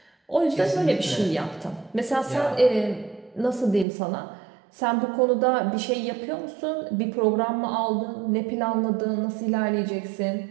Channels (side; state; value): left; drops out; at 3.9 s